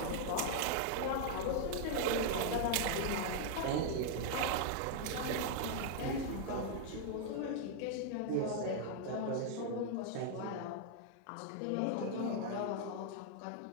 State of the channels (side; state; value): both; different; correlation -0.01